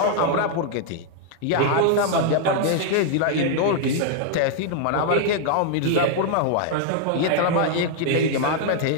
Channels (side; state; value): both; different; correlation 0.00